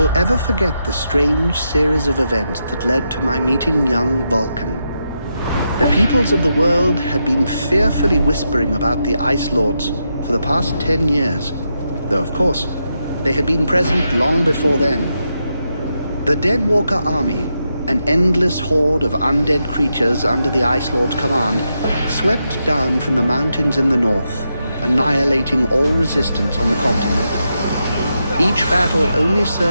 ever forget the strange series of events that led to my meeting young Vulcan. The peoples of the world had been fearfully whispering about the Ice Lords for the past 10 years, though of course, they had been present long before then. The Deadwalker army, an endless horde of undead creatures under the Ice Lord's command, swept down from the mountains in the north, annihilating all resistance on the continent. Each battle only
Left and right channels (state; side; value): inverted; both; correlation -0.85